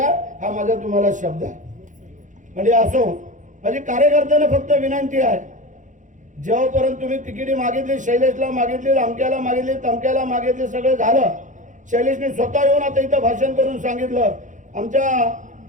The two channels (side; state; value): left; late; 0.36 ms